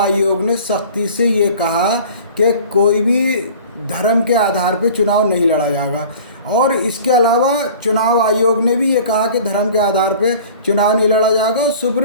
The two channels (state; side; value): inverted; both; correlation -0.45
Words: ने सख्ती से ये कहा कि कोई भी धर्म के आधार पे चुनाव नहीं लड़ा जाएगा, और इसके अलावा चुनाव आयोग ने भी ये कहा कि धर्म के आधार पे चुनाव नहीं लड़ा जाएगा। और